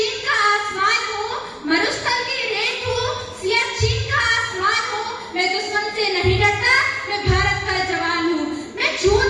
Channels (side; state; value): both; identical; correlation 1.00